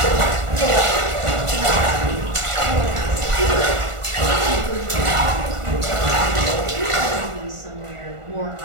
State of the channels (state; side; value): late; left; 1.4 ms